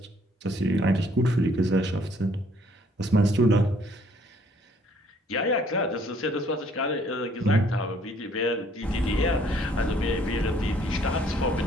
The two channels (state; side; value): normal; both; correlation 0.62